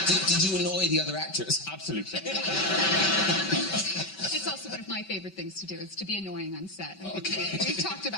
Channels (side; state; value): right; late; 5.2 ms